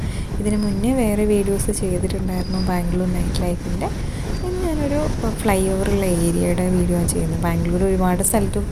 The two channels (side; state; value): both; identical; correlation 1.00